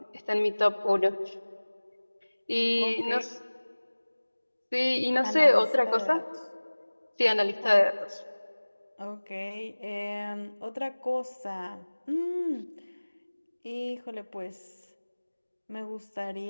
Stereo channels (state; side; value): inverted; both; correlation -1.00